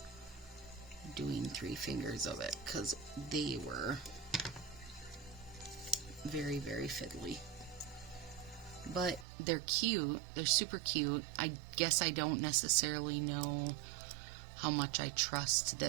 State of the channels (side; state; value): left; drops out; at 9.2 s